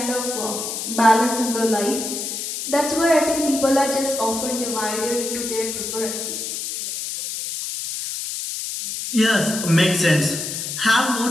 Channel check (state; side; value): noise; left; hiss, 5 dB below the sound